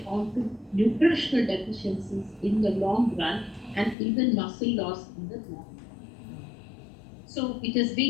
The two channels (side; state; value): right; drops out; at 4.0 s